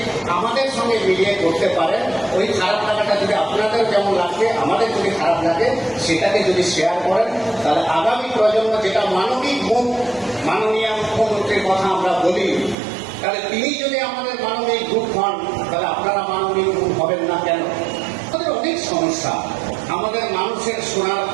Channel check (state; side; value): drops out; left; at 12.8 s